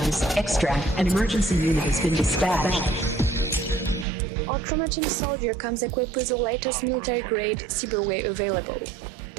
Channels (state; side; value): drops out; left; at 4.0 s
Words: extract. An emergency unit has been dispatched. Our Trauma Team soldier comes equipped with the latest military-grade cyberware available.